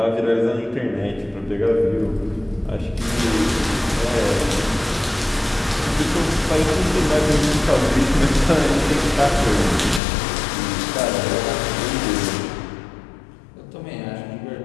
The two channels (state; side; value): drops out; right; at 10.0 s